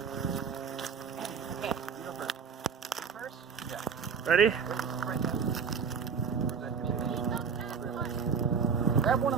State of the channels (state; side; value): quieter; left; 6.2 dB